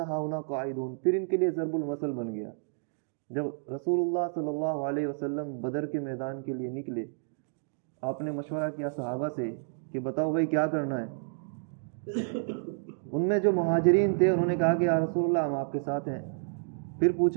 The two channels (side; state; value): left; silent; digital silence